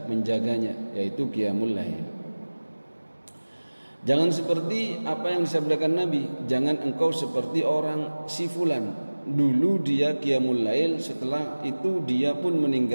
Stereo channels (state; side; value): inverted; both; correlation -1.00